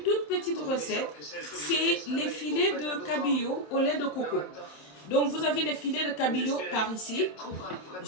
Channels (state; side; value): late; right; 27 ms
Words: petite recette. C'est les filets de cabillaud au lait de coco. Donc, vous avez les filets de cabillaud par ici.